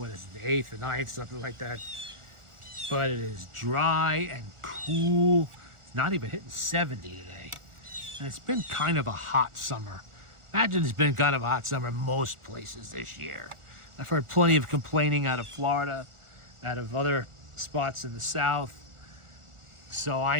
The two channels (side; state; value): left; late; 1.4 ms